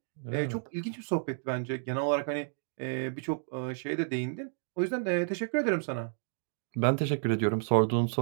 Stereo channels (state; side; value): silent; left; digital silence